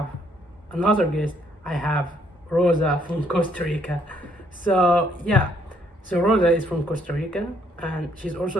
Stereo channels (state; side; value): normal; both; correlation 0.68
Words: another guest. I have Rosa from Costa Rica. So Rosa is from Costa Rica, and she's also